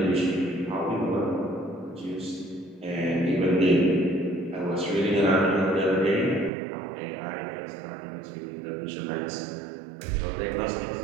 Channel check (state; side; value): drops out; left; at 6.5 s